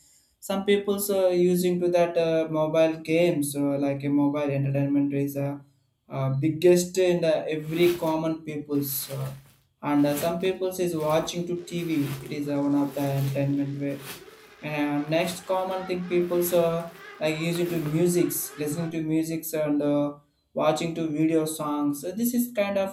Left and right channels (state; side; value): identical; both; correlation 1.00